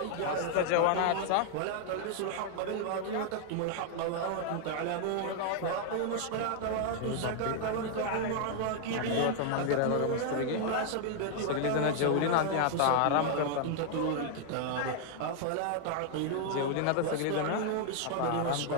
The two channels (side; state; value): both; different; correlation 0.00